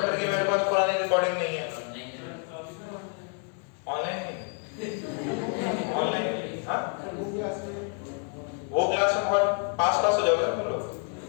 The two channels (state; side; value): quieter; right; 40.0 dB